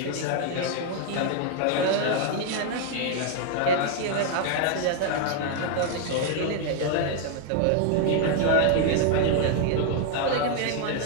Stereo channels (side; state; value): both; different; correlation 0.00